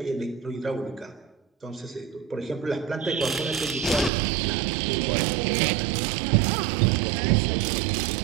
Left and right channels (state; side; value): drops out; left; at 4.1 s